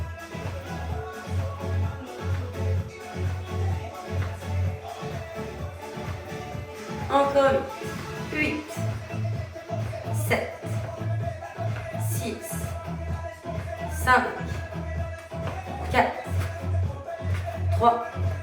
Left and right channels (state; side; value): identical; both; correlation 1.00